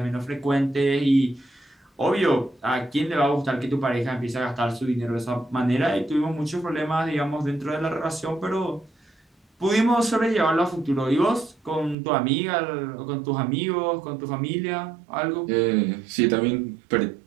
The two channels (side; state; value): left; drops out; at 12.0 s